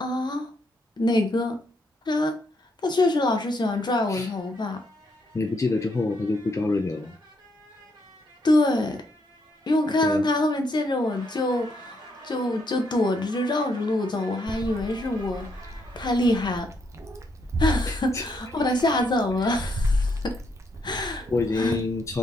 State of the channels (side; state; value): both; normal; correlation 0.76